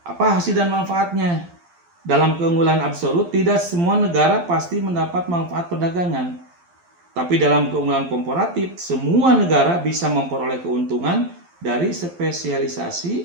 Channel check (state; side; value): late; left; 12 ms